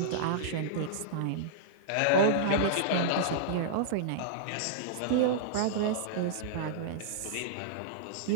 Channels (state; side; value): different; both; correlation -0.02